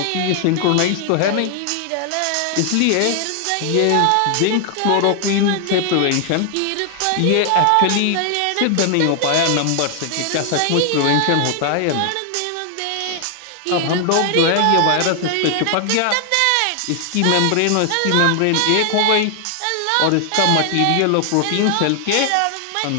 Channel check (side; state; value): both; different; correlation 0.00